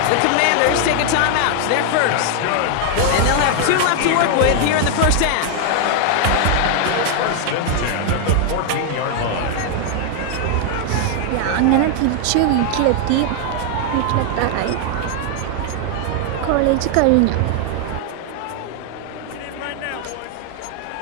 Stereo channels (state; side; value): different; both; correlation 0.00